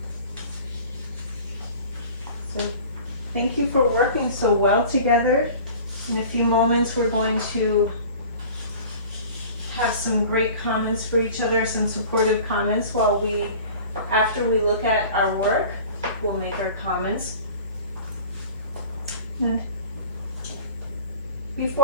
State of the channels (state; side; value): inverted; both; correlation -0.41